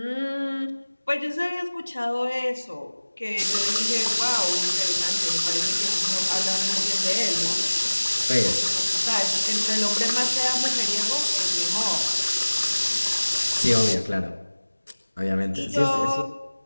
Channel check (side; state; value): both; inverted; correlation -1.00